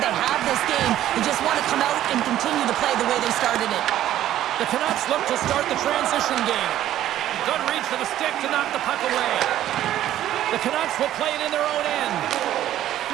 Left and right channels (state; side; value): quieter; left; 12.6 dB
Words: they have this game. They just want to come out and continue to play the way they started it. The Canucks look to start the transition game. Good reach for the stick to knock the puck away. The Canucks will play it in their own end.